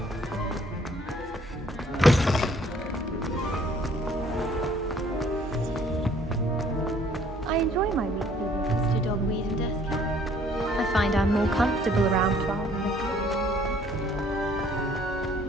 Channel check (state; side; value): normal; both; correlation 0.59